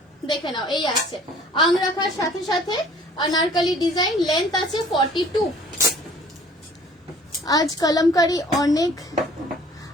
দেখে নাও এই আছে আংরাখার সাথে সাথে अनारकली ডিজাইন, লেন্থ আছে 42। আজ কলমকারি অনেক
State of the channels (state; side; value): normal; both; correlation 0.52